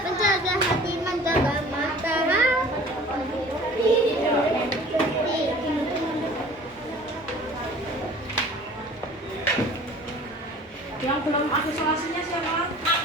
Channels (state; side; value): normal; both; correlation 0.46